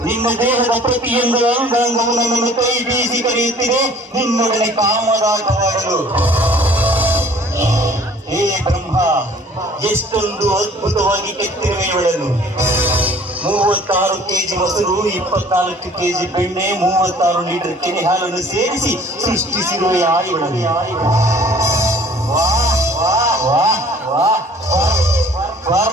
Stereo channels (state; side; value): normal; both; correlation 0.52